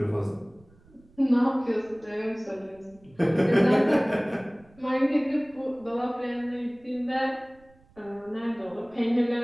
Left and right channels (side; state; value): right; noise; rumble, 28 dB below the sound